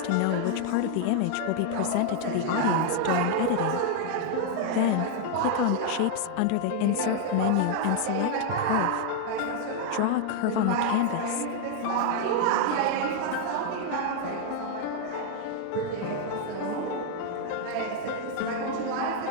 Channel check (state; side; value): different; both; correlation 0.00